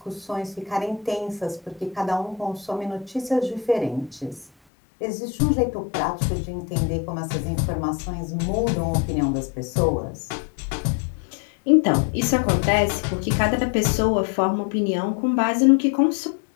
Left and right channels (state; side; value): drops out; right; at 4.5 s